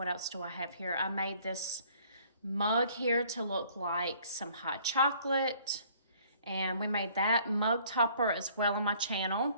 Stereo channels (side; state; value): both; inverted; correlation -0.58